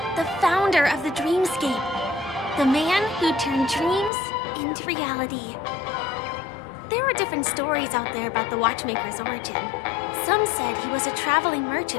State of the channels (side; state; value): right; drops out; at 4.1 s